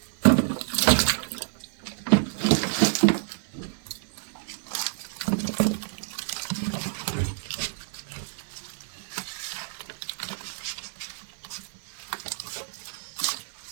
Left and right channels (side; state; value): left; silent; digital silence